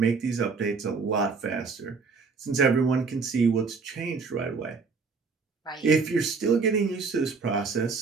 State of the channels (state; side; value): quieter; left; 4.7 dB